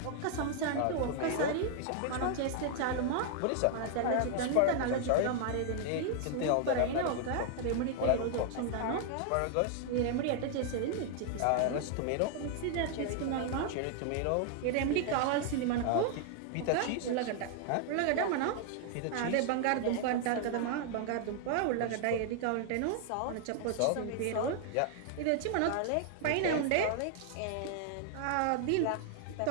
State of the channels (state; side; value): different; both; correlation 0.00